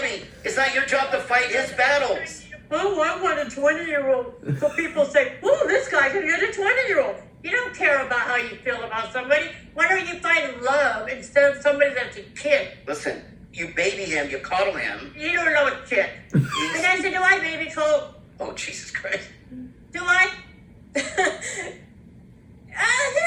it's not your job to fight his battles. Oh, I want a 20-year-old. So people say, oh, this guy can get a 20-year-old. You don't care about how you feel about somebody. Why don't you find love instead of somebody that's a kid? Listen, you baby him, you coddle him. You don't know a shit. And I said, do I baby Colt? Oh, Jesus Christ. Do I? Here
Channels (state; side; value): identical; both; correlation 1.00